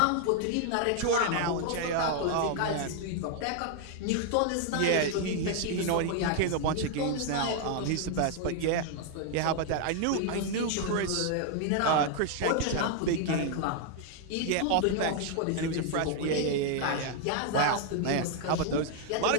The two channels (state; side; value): different; both; correlation 0.00